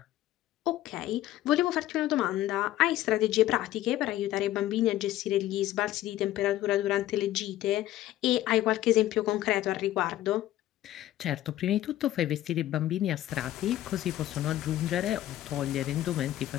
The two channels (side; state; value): right; quieter; 14.2 dB